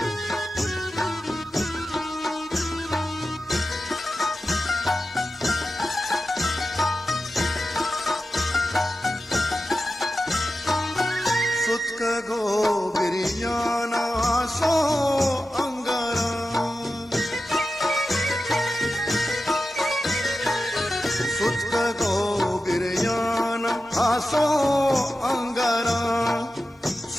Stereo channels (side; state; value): both; normal; correlation 0.92